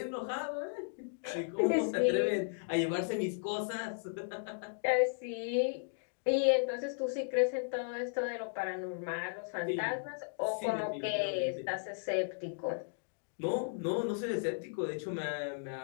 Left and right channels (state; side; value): silent; right; digital silence